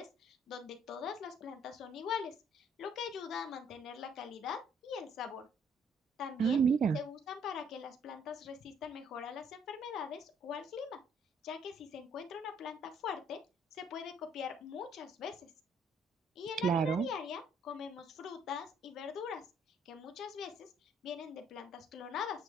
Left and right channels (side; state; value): both; normal; correlation 0.65